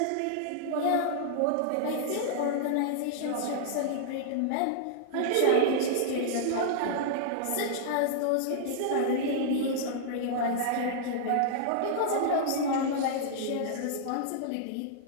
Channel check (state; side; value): different; both; correlation -0.01